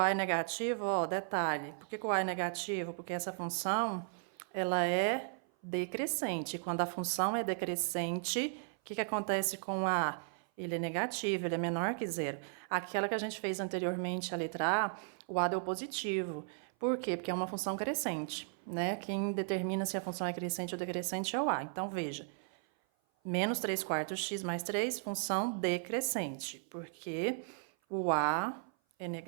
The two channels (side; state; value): left; silent; 54 dB below the other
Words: é negativo, ó, detalhe. Por que o A é negativo? Porque essa função, ela é decrescente. Quando a função é decrescente, o que acontece com o A? Ele é negativo, ele é menor que 0. Aquela que a gente fez anteriormente, a letra A, o A deu positivo. Por quê? Porque é uma função crescente, né? Quem determina se a função é crescente ou decrescente é o A. Então, veja. Menos 3 quartos x mais 3, função decrescente, porque o A é